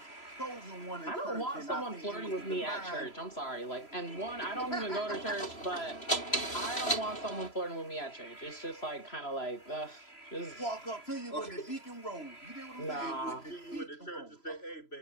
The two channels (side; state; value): right; late; 3.0 ms